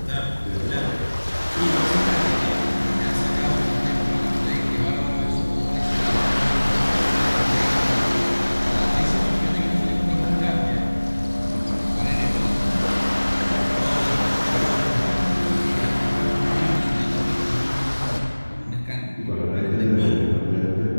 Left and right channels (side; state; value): both; inverted; correlation -1.00